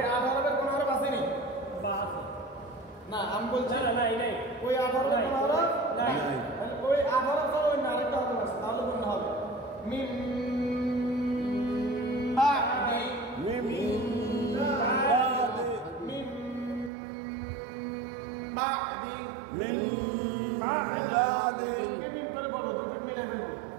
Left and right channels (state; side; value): drops out; left; at 16.9 s